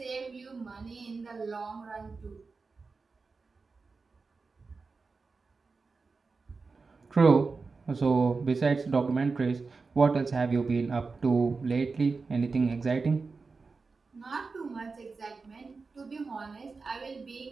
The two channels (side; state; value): left; quieter; 4.3 dB